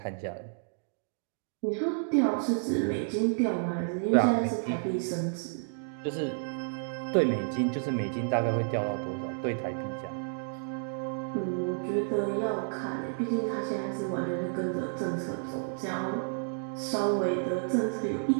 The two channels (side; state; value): left; silent; digital silence